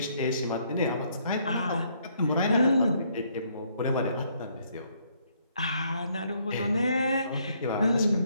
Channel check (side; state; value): both; inverted; correlation -0.69